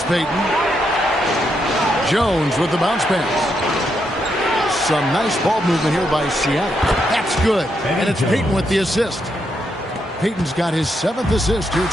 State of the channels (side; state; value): both; normal; correlation 0.80